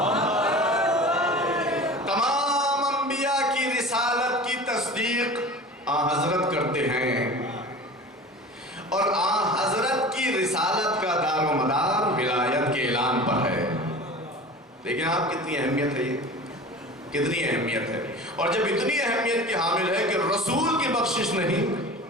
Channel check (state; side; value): normal; both; correlation 0.37